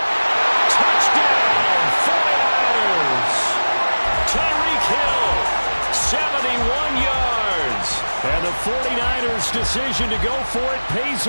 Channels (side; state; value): both; inverted; correlation -1.00